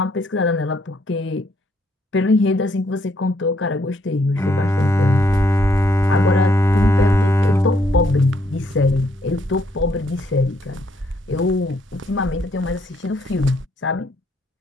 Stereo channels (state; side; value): normal; both; correlation 0.71